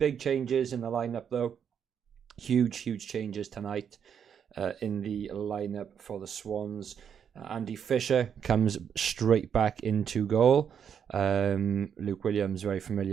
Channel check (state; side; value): quieter; left; 7.9 dB